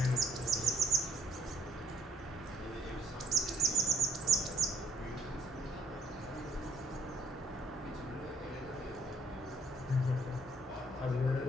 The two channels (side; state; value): both; normal; correlation 0.66